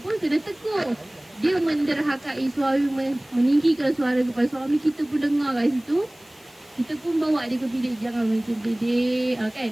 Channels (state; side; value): noise; left; hiss, 28 dB below the sound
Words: kena tegur. Dia menderhakai suami, meninggikan suara kepada suami, kita pun dengar kat situ. Kita pun bawa dia ke bilik, jangan macam dedek,